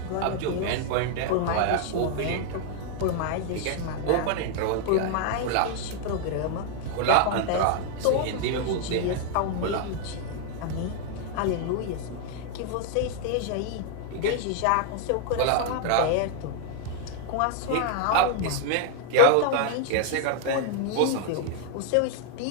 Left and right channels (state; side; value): different; both; correlation 0.00